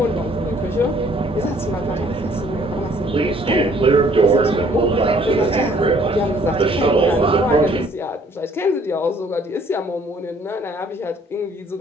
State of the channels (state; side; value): normal; both; correlation 0.60